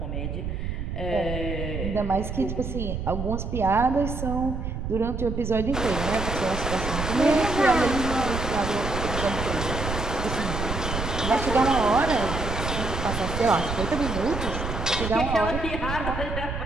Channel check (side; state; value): right; noise; rumble, 4 dB below the sound